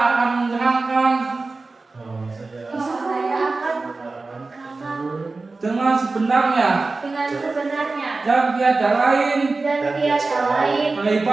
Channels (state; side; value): quieter; left; 3.6 dB